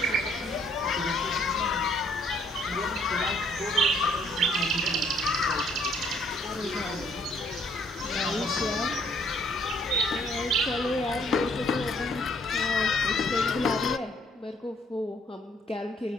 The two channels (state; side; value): normal; both; correlation 0.64